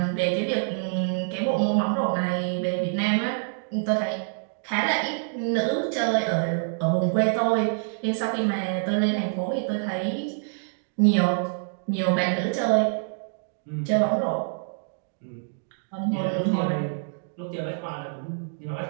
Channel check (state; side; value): silent; left; digital silence